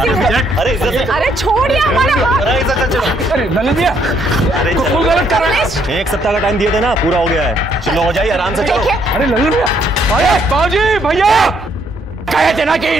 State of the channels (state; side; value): normal; both; correlation 0.70